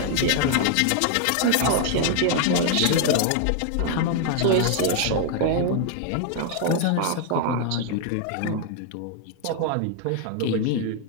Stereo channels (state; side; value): different; both; correlation 0.00